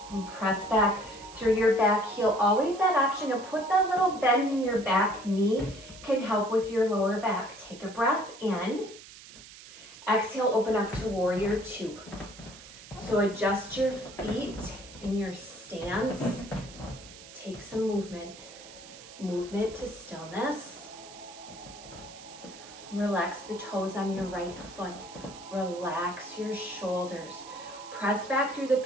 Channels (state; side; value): noise; right; hiss, 17 dB below the sound